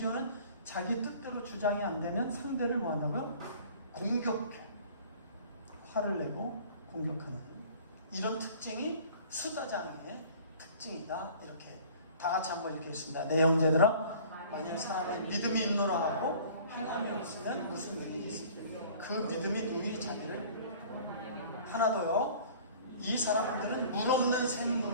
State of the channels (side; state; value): both; inverted; correlation -0.48